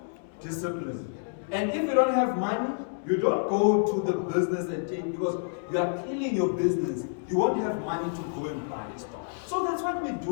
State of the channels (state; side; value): silent; right; digital silence